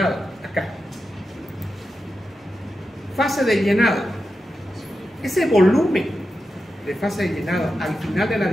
acá. Fase de llenado. Ese volumen de fase de llenado al final de la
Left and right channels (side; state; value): both; normal; correlation 0.90